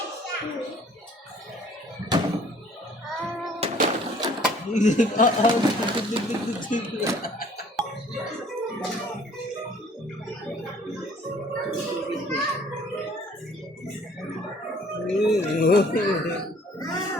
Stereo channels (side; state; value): both; normal; correlation 0.56